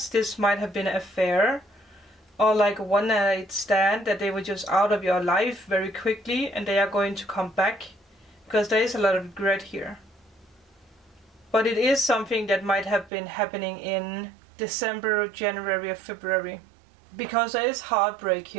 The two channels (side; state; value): left; drops out; at 13.1 s